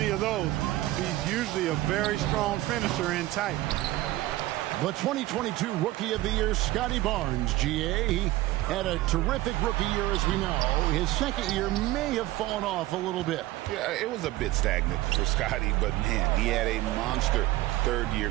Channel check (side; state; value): left; quieter; 17.1 dB